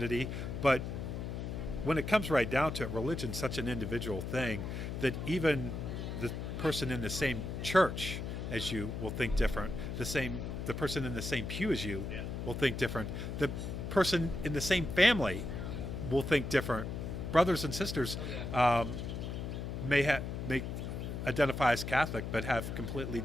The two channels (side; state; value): left; noise; hum, 5 dB below the sound